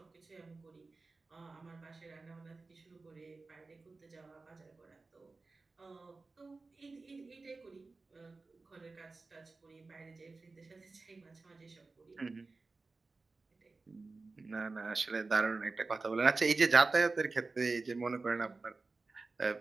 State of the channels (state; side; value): quieter; left; 3.7 dB